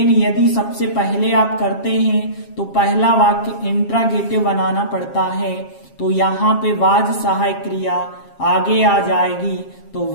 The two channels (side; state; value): right; late; 7.4 ms